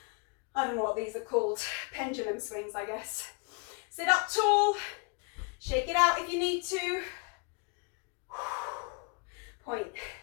I don't know what these are called. Pendulum swings, I guess. Sit up tall. Shake it out if you need to. Point.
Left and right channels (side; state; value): right; quieter; 34.1 dB